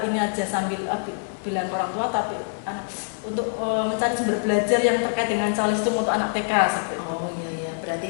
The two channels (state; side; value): silent; right; 62 dB below the other